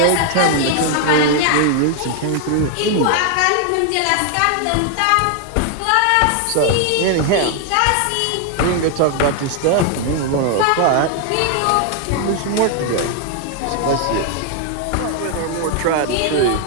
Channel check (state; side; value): different; both; correlation 0.00